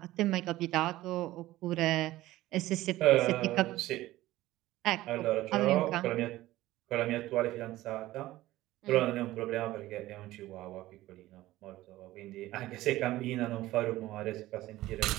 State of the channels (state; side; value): quieter; left; 16.5 dB